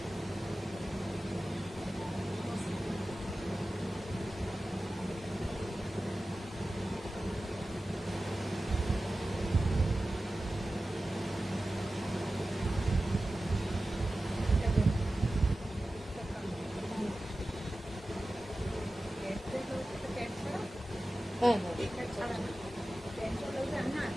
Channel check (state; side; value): normal; both; correlation 0.95